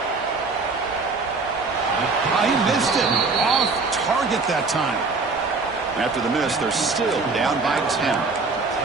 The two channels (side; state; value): left; quieter; 4.0 dB